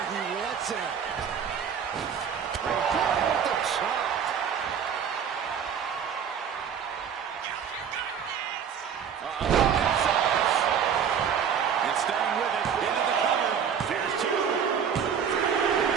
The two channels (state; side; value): quieter; left; 7.6 dB